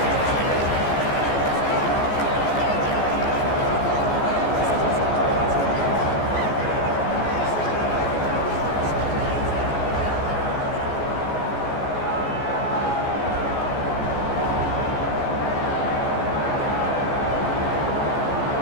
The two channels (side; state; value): right; late; 14 ms